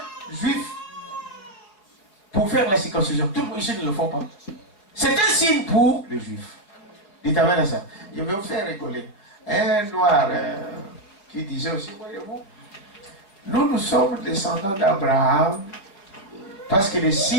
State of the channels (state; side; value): late; right; 4.9 ms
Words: juif pour faire la circoncision. Tout le monde ici ne le font pas. C'est un signe pour les juifs. Dites amen à ça. Je vais vous faire rigoler. Un noir qui disait aussi, voyez-vous, nous sommes descendants d'Abraham parce que le